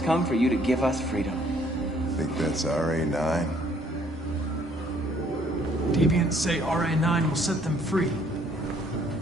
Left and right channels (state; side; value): normal; both; correlation 0.63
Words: come for you to give us freedom. Think that's RA9? Deviants say RA9 will set them free.